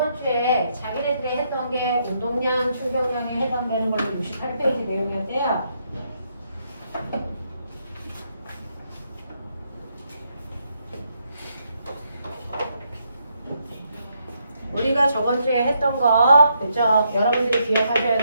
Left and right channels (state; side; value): inverted; both; correlation -0.77